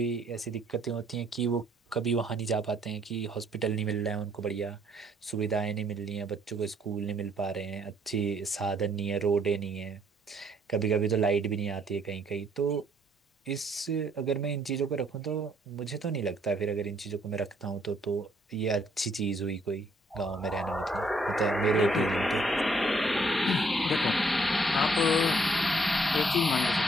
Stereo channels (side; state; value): both; normal; correlation 0.66